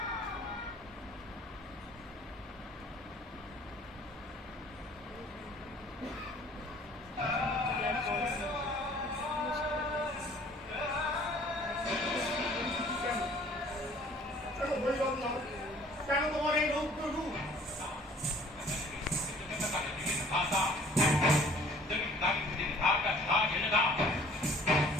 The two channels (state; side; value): normal; both; correlation 0.53